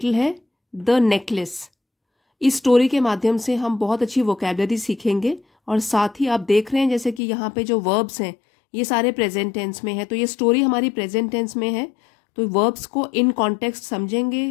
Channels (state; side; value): drops out; right; at 7.2 s